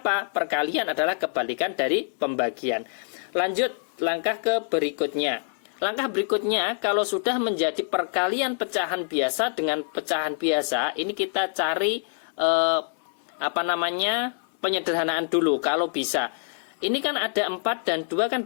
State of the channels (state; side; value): silent; right; 61 dB below the other